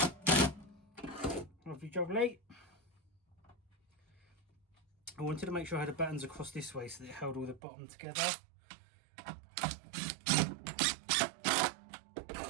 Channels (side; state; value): left; drops out; at 7.6 s